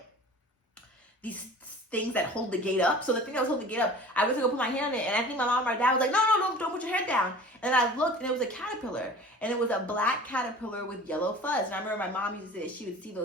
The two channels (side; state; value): both; normal; correlation 0.42